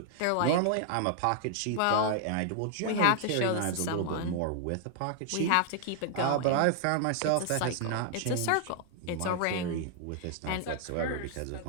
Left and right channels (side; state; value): both; different; correlation 0.00